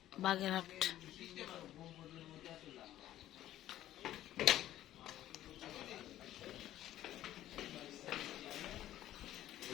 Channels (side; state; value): right; quieter; 13.2 dB